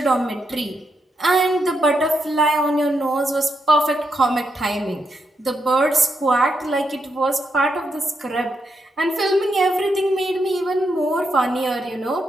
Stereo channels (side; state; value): both; normal; correlation 0.82